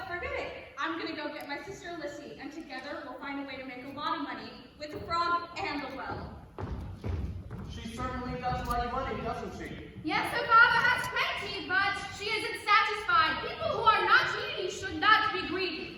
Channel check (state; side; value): identical; both; correlation 1.00